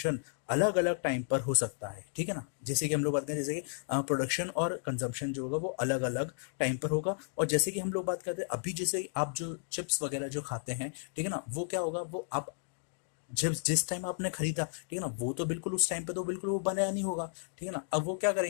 अलग अलग टाइम पर हो सकता है, ठीक है ना। जैसे कि हम लोग बात करें, जैसे कि प्रोडक्शन और कंजम्पशन जो होगा वो अलग अलग टाइम पर होगा। और जैसे कि हम लोग बात करते हैं अभी, जैसे आप जो चिप्स वगैरह जो खाते हैं, ठीक है ना, वो क्या होगा, वो आप जब जिस टाइम आपने खरीदा, ठीक है ना, वो तो बिल्कुल उस टाइम पे तो बिल्कुल वो बनाया नहीं होगा, ठीक है ना। अब वो क्या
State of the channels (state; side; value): silent; right; digital silence